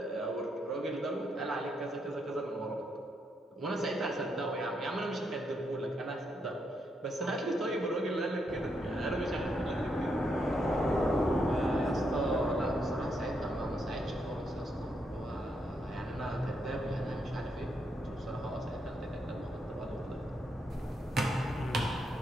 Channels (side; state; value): both; normal; correlation 0.79